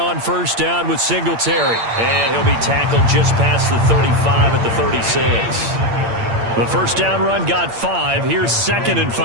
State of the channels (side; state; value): left; late; 8.7 ms